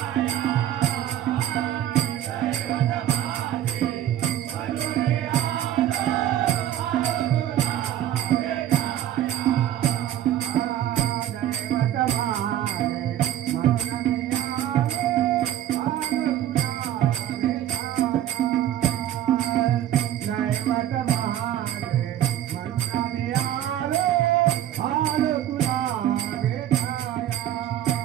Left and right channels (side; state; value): left; quieter; 11.7 dB